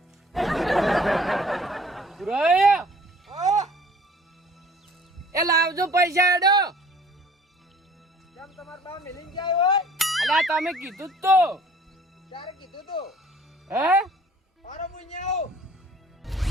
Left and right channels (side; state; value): both; normal; correlation 0.52